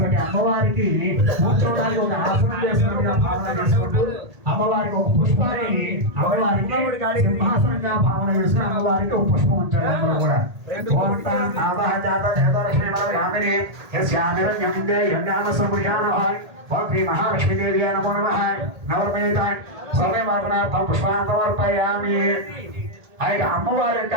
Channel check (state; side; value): late; left; 1.8 ms